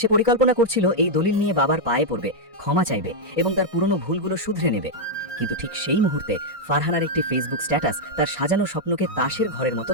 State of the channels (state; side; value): normal; both; correlation -0.02